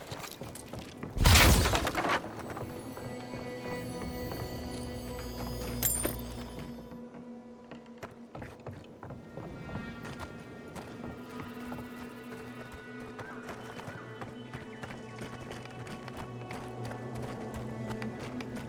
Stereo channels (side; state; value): both; identical; correlation 1.00